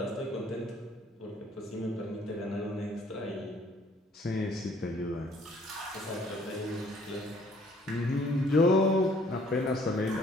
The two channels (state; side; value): normal; both; correlation 0.60